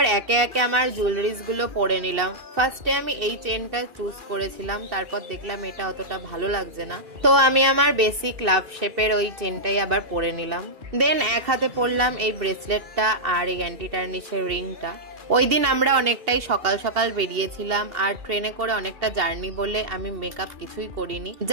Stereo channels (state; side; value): late; left; 2.6 ms